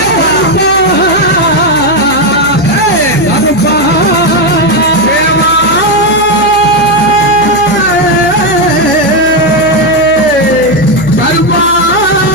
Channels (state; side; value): noise; right; hum, 15 dB below the sound